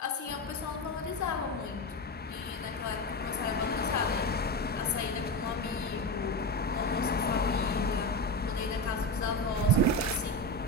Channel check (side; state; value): both; normal; correlation 0.18